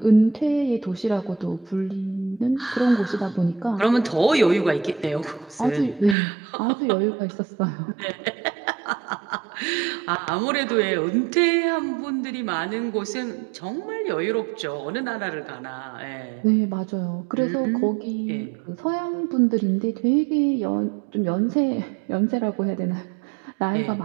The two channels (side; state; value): left; drops out; at 6.2 s